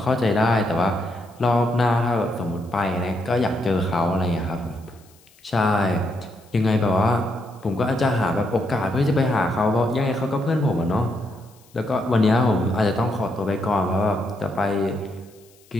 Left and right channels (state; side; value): noise; left; hiss, 29 dB below the sound